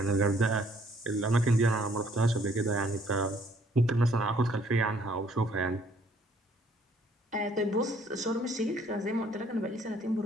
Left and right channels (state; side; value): normal; both; correlation 0.63